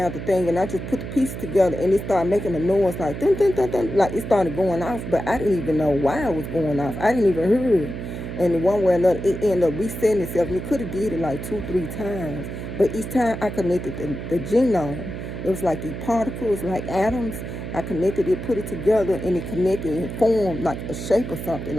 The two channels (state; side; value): noise; right; hum, 7 dB below the sound